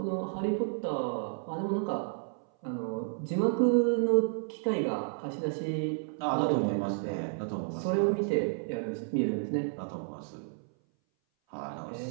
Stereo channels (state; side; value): silent; left; 57 dB below the other